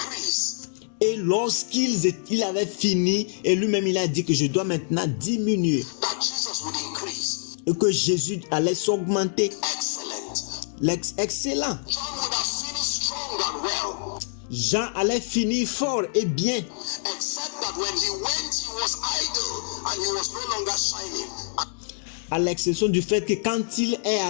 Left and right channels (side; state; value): right; silent; digital silence